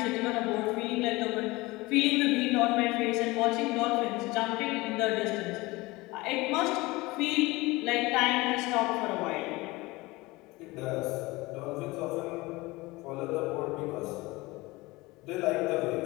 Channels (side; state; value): right; quieter; 21.8 dB